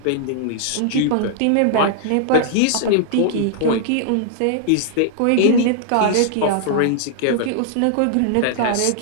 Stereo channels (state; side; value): different; both; correlation -0.01